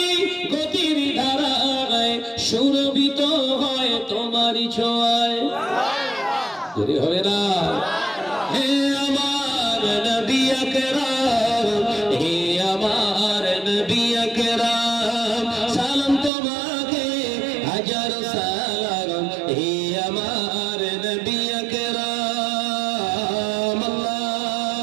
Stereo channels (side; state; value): left; drops out; at 16.3 s